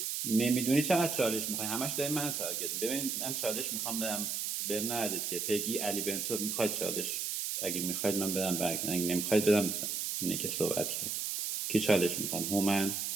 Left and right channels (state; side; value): noise; right; hiss, 2 dB below the sound